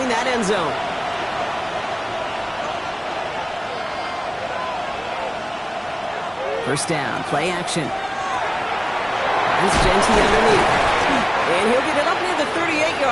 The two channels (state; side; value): identical; both; correlation 1.00